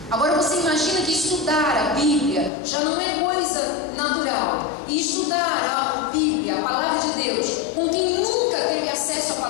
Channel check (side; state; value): right; drops out; at 2.5 s